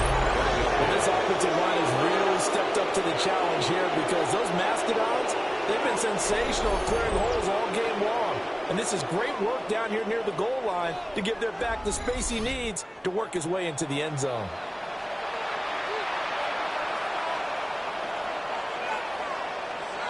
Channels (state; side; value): identical; both; correlation 1.00